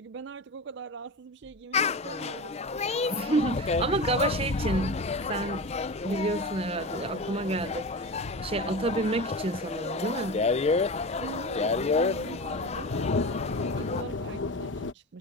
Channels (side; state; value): both; normal; correlation 0.27